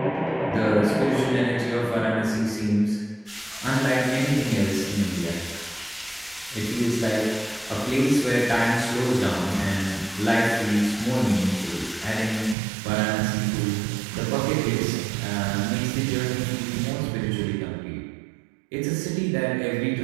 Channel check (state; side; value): drops out; left; at 12.6 s